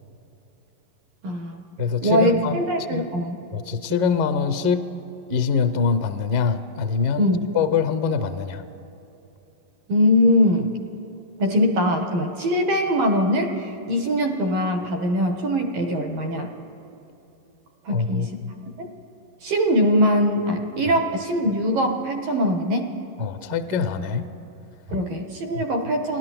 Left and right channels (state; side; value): late; left; 11 ms